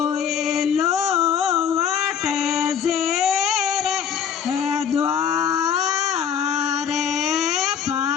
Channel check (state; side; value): quieter; right; 7.8 dB